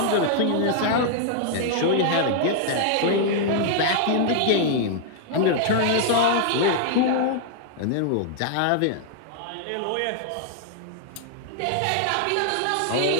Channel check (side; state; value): both; different; correlation -0.01